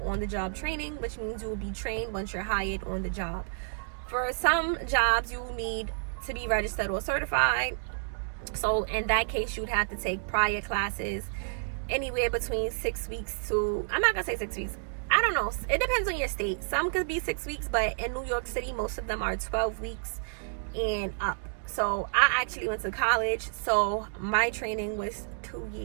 on-the-job training, which means you will be trained once you're hired on the job. For some jobs, you need to be registered or certified. So in that case, you'd have to take prior classes anywhere between 6 weeks to, I'm not gonna say 6 weeks, I don't know, it depends on your state. Some could be 6 weeks, but in New York City, most of them are 12 weeks and up. So I actually went to college, so my training was 2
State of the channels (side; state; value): left; silent; digital silence